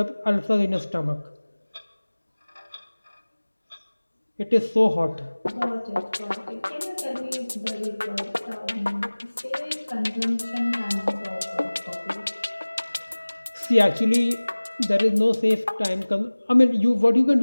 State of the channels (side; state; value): both; inverted; correlation -1.00